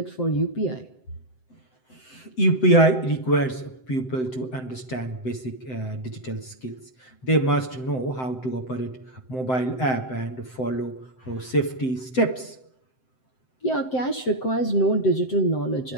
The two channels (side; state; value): right; late; 7.8 ms